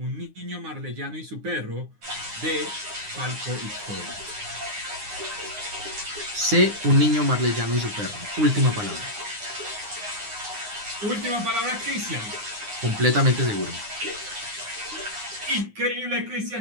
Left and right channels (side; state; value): left; late; 9.7 ms